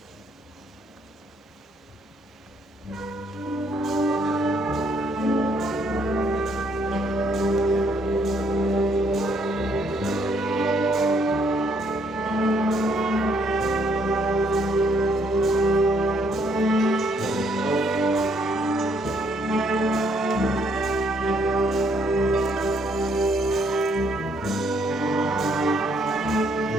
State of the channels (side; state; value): both; normal; correlation 0.69